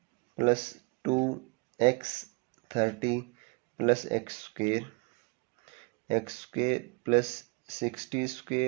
plus 2x 30 plus x square plus 60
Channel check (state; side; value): quieter; left; 32.0 dB